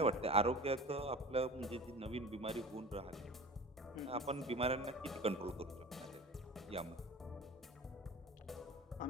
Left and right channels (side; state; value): both; normal; correlation 0.36